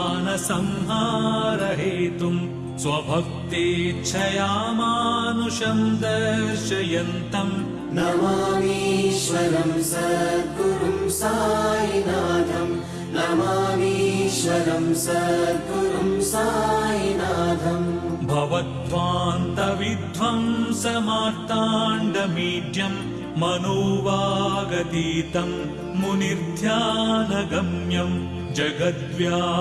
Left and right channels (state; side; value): identical; both; correlation 1.00